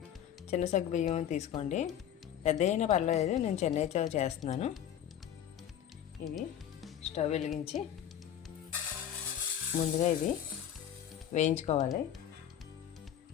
చిన్న సగ్గు బియ్యం తీసుకోండి, పెద్ద అయినా పర్వాలేదు. నేను చెన్నైతో చేస్తున్నాను. ఇవి స్టవ్ వెలిగించి ముందుగా ఇవి వేయించుకోవాలి.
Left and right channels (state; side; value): quieter; right; 10.1 dB